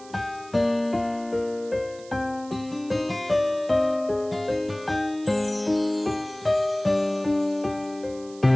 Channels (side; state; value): right; noise; hiss, 22 dB below the sound